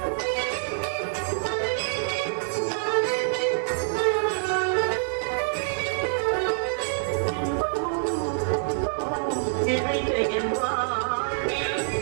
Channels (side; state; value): left; silent; digital silence